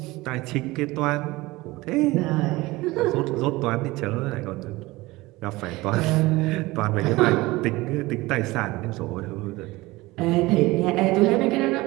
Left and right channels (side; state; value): left; quieter; 20.4 dB